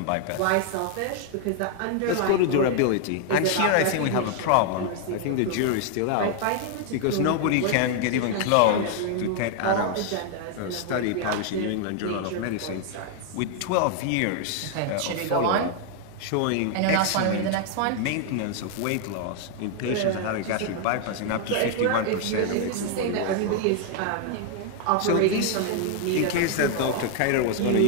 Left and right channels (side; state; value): both; different; correlation 0.00